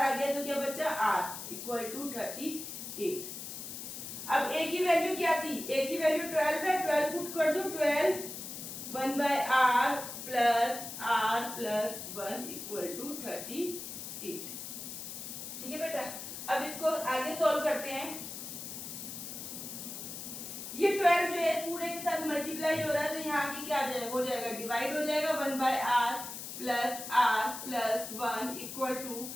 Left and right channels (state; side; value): noise; left; hiss, 8 dB below the sound